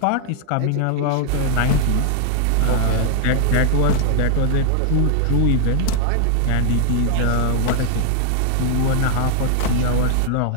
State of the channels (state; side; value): different; both; correlation 0.00